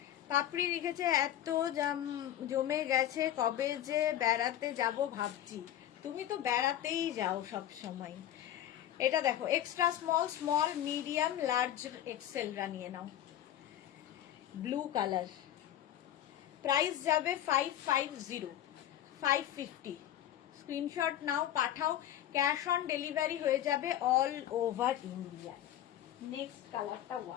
পাপড়ি লিখেছে এত জমে গেছে, কবে যে বেড়াতে যাব ভাবছি। তুমি তো বেড়াতেই যাও সব সময়। এটা দেখো extra small, small medium large এক্সেলরা নিয়ে নাও, ব্লু কালার। প্রাইস যাবে 550, 550। স্ক্রিনশট নাও, পাঠাও, ক্যাশ অন ডেলিভারি হয়ে যাবে অল ওভার ইন্ডিয়া। নেক্সট কালারটা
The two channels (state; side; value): quieter; right; 11.8 dB